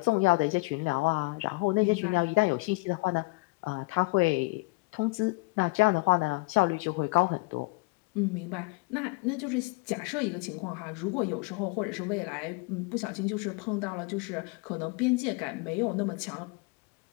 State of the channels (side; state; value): right; quieter; 26.2 dB